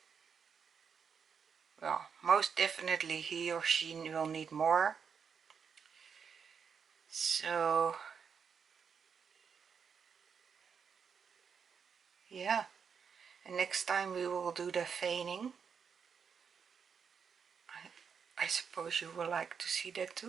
well, most definitely he or she will need more. So yeah, and next time we will do the veining. I suppose you will like to see that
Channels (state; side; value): quieter; left; 6.6 dB